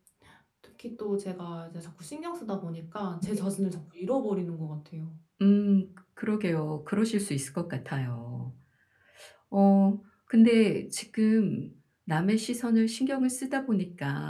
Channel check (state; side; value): identical; both; correlation 1.00